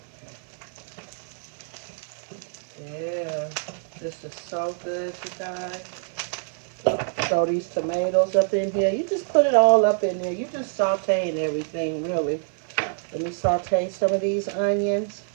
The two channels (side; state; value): left; silent; 61 dB below the other